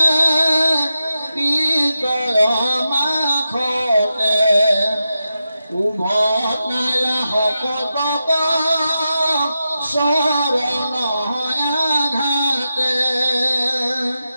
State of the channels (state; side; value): inverted; both; correlation -0.90